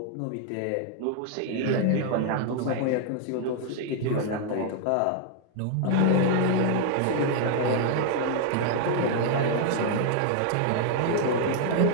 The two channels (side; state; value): both; different; correlation 0.00